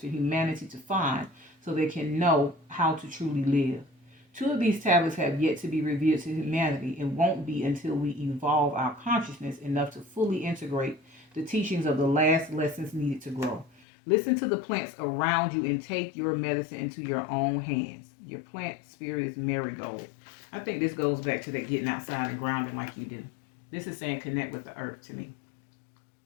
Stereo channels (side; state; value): right; drops out; at 13.8 s